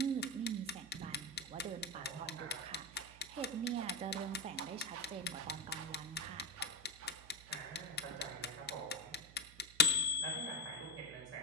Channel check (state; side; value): noise; right; hum, 20 dB below the sound